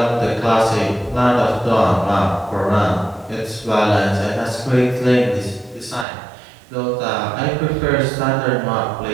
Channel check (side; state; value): left; drops out; at 6.1 s